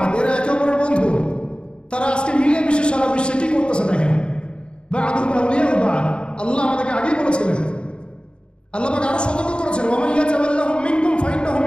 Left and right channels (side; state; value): right; late; 0.053 ms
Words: এরা একে অপরের বন্ধু। তারা আজকে মিলে মিশে সারা বিশ্বে কি করতেছে দেখেন। বা'দুহুম আউলিয়াউ বা'দ, আল্লাহ আমাদেরকে আগেই বলেছিলেন। আল্লাহ পাক আরো সতর্ক করেছেন, ওয়া মান ইয়াতাওয়াল্লাহুম মিনকুম ফাইন্নাহু